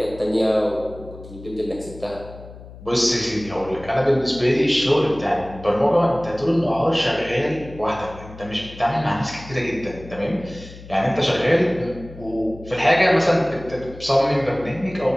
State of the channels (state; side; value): noise; left; hum, 17 dB below the sound